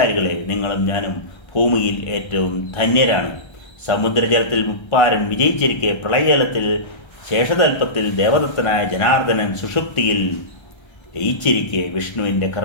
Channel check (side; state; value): right; late; 1.3 ms